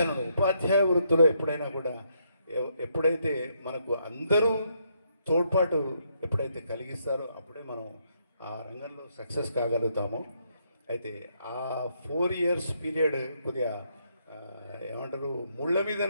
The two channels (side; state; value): both; inverted; correlation -0.75